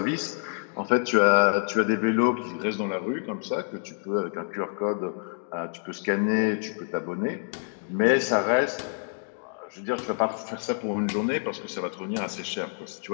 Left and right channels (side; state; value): right; silent; digital silence